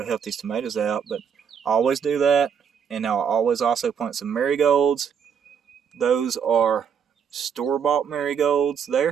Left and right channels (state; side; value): quieter; left; 7.4 dB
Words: help these tomatoes out. But I always do that, and I'll always also plant some marigolds. Those are store-bought marigolds